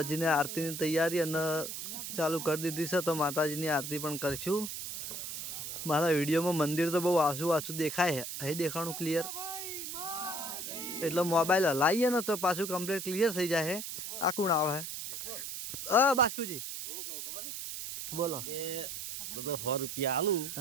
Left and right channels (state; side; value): noise; right; hiss, 6 dB below the sound